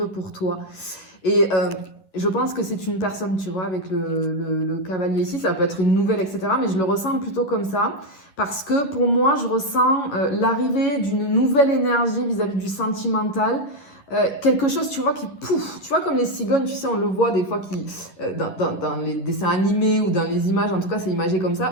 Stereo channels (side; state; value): right; late; 11 ms